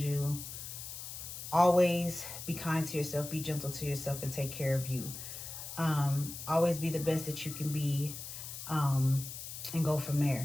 you, always be kind to yourself, be gentle to yourself, and take care of you. Always be the best that you can be, and go from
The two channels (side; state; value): left; noise; hiss, 9 dB below the sound